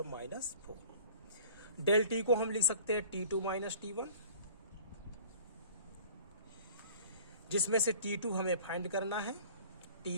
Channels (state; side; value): inverted; both; correlation -0.46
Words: -4। डेल टी को हम लिख सकते हैं T2 माइनस T1, जिसमें से T2 हमें फाइंड करना है।